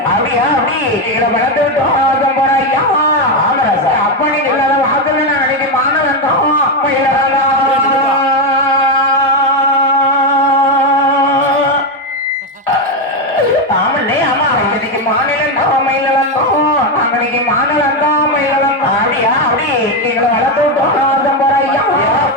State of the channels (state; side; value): normal; both; correlation 0.08